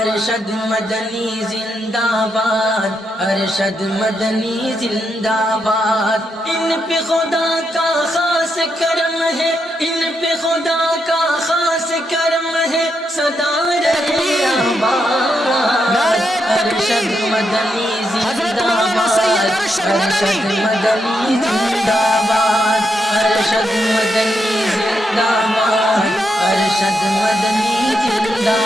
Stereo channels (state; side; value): normal; both; correlation 0.81